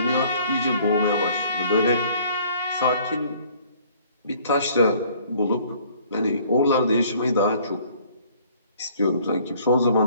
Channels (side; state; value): both; inverted; correlation -0.57